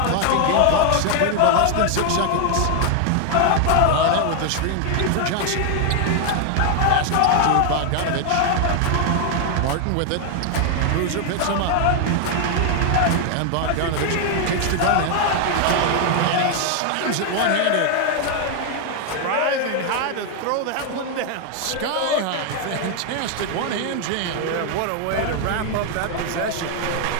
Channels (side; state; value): both; different; correlation 0.00